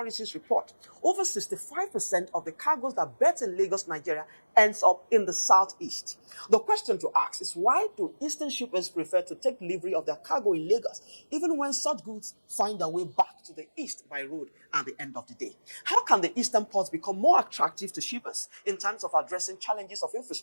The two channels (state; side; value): inverted; both; correlation -1.00